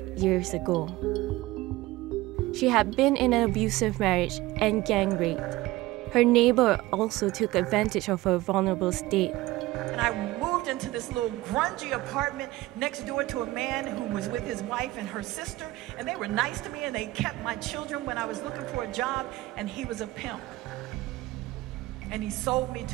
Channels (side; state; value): left; quieter; 18.4 dB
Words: years ago. She had been in an abusive marriage and gang raped. Her neighbor also took advantage of her vulnerable state. And I moved into this little grungy apartment next door to a man who was with his wife and her sister, and they were nice to me and they kept my children when I was looking for a job, and he was a pimp. And he sold me